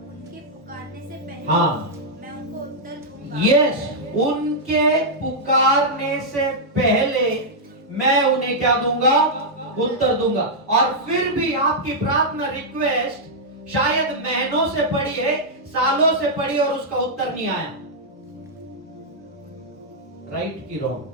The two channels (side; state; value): both; normal; correlation -0.07